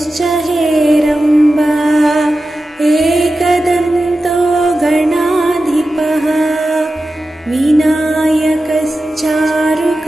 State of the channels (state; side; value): normal; both; correlation 0.93